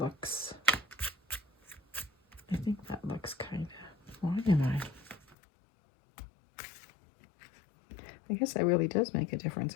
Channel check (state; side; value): drops out; right; at 5.4 s